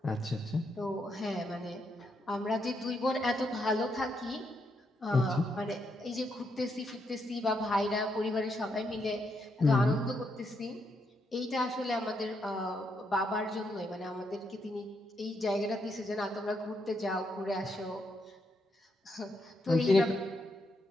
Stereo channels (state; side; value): normal; both; correlation 0.79